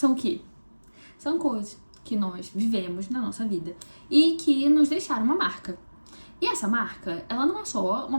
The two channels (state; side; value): inverted; both; correlation -1.00